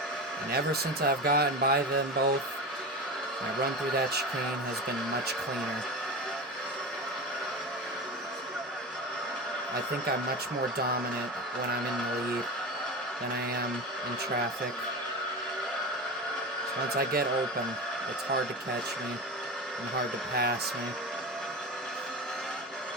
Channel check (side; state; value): both; normal; correlation 0.26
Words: And ever since I've gotten by them both, my run through that chicane has been much cleaner. I think I'm much more dominant when I'm in the lead than I am in traffic. So once I get open, it's hard to catch me and hard to pass me.